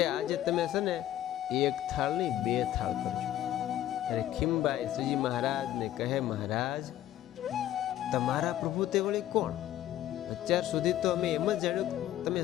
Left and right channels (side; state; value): right; quieter; 12.7 dB